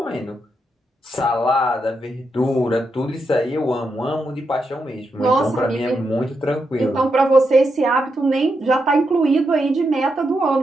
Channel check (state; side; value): normal; both; correlation 0.84